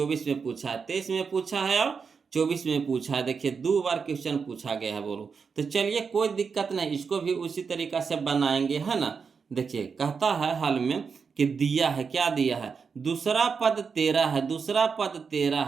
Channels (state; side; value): quieter; left; 5.7 dB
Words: में पूछा है, 23 में पूछा है और 24 में पूछा है। देखिए 2 बार क्वेश्चन पूछा गया है बोलो। तो चलिए कोई दिक्कत नहीं, इसको भी उसी तरीका से बनाएंगे, है ना। देखिए कहता है हल में कि दिया है, क्या दिया है, दूसरा पद 13 है, दूसरा पद 13